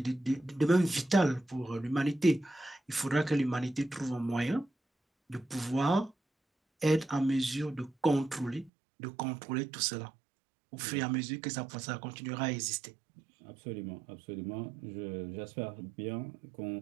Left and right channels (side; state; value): left; drops out; at 8.7 s